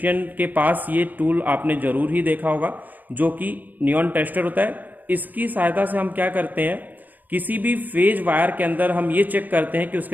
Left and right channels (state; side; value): late; left; 0.084 ms